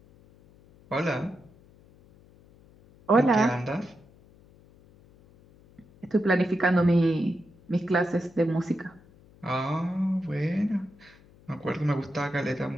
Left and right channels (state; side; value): noise; left; hum, 27 dB below the sound